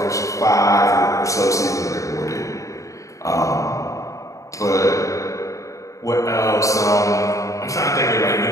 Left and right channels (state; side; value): late; right; 0.16 ms